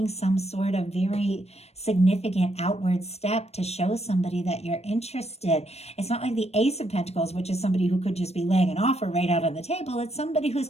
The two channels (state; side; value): late; right; 0.31 ms